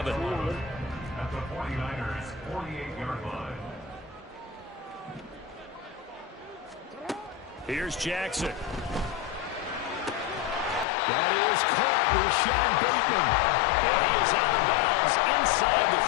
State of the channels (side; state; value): right; drops out; at 10.9 s